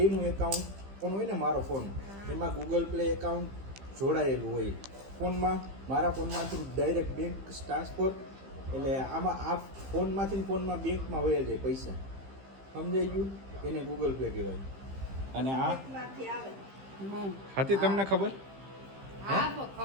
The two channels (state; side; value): late; left; 15 ms